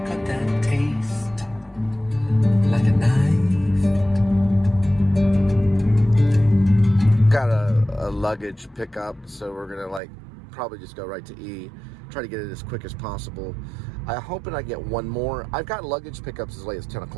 cut that taste like a knife. Got a luggage pickup, so we're gonna probably just go right to E. Try to get it as quick as possible. I'm hoping I get one more. I've got luggage pickups as late as 10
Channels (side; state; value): left; drops out; at 10.0 s